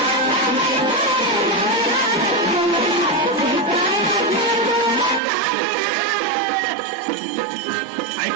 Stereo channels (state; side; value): drops out; left; at 5.2 s